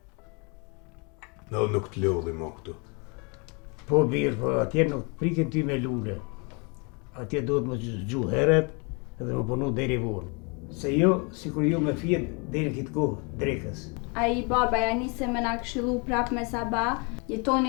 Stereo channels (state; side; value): quieter; right; 32.6 dB